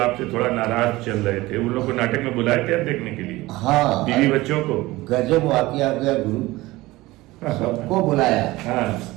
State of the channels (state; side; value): quieter; left; 19.4 dB